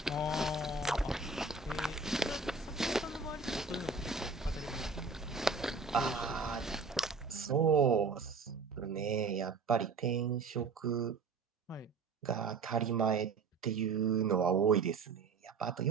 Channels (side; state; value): left; quieter; 4.4 dB